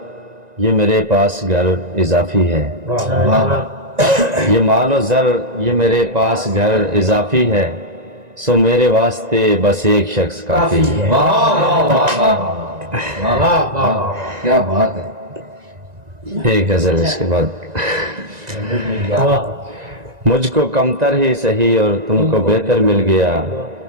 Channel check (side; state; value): left; late; 1.9 ms